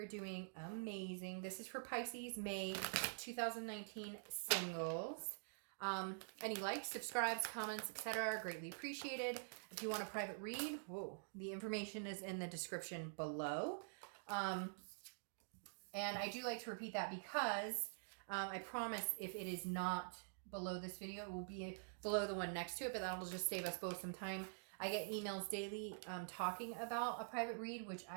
doing amazing. This is for Pisces, May 2019 singles. Any likes, subscribes, comments, etc. are greatly appreciated. If you want a private read, the information is in the description below. And I do like to repeat that because I promise if it is not below this video, it will be below the one next to it, but that'll just save us both some time. I get emails daily talking about a private read, which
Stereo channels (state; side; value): silent; left; digital silence